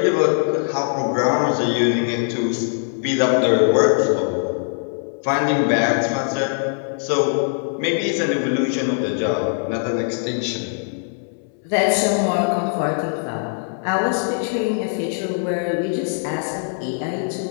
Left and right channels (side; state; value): right; silent; 65 dB below the other